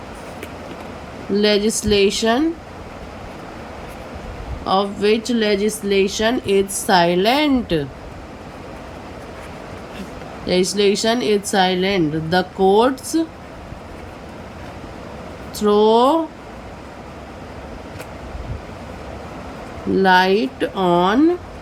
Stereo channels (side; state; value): both; identical; correlation 1.00